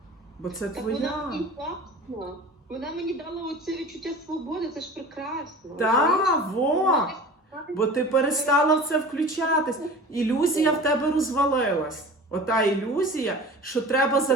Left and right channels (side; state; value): both; normal; correlation 0.38